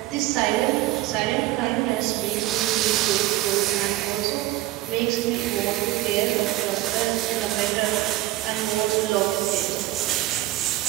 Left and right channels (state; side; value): quieter; left; 16.3 dB